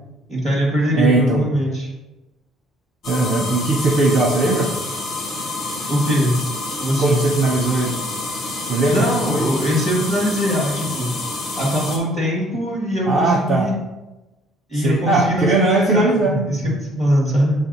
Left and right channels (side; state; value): both; normal; correlation 0.61